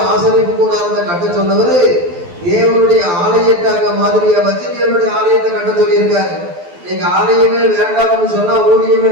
ஆசரிப்பு கூடாரத்தை கட்ட சொன்னவரு தேவனுடைய ஆலயத்தை அங்க மாதிரியா வச்சு தேவனுடைய ஆலயத்தை கட்ட சொல்லியிருக்காரு. நீங்க ஆலயமே வேண்டாம்னு சொன்னா, ஊழியமே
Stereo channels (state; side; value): late; left; 12 ms